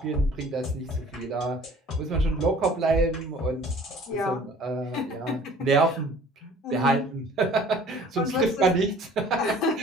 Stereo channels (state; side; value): normal; both; correlation 0.50